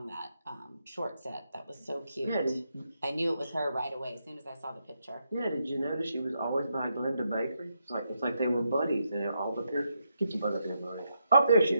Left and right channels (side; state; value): both; inverted; correlation -0.81